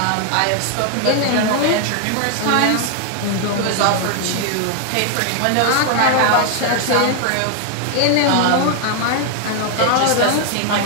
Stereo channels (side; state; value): both; different; correlation 0.00